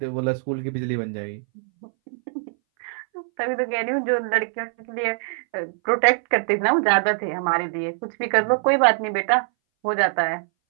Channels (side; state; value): left; silent; 61 dB below the other